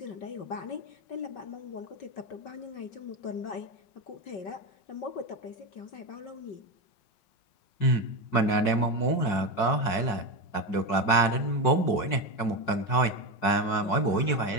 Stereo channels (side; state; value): right; late; 5.5 ms